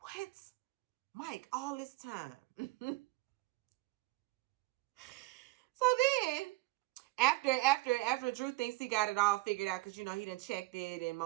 Mike, all this time. So then, after Drew thinks he got it all figured out, because, he done checked it, and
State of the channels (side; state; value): left; quieter; 20.6 dB